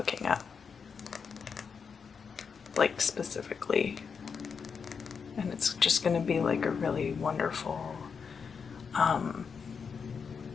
up. Like specifically. And it's just going to be like a really wonderful,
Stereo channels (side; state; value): right; quieter; 6.0 dB